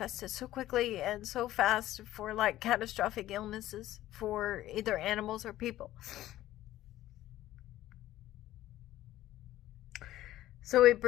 so quickly and so fast for like catastrophic illnesses for either animals or people. So it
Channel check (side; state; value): right; quieter; 14.4 dB